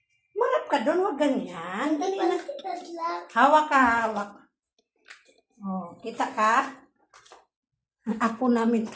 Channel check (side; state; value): both; identical; correlation 1.00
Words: Humarap ka doon, huwag ganyan. Dali na. Hawak ka, hawak. O, kita ka? Apo namin